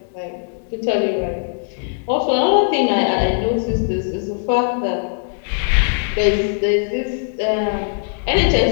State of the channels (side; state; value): right; silent; 66 dB below the other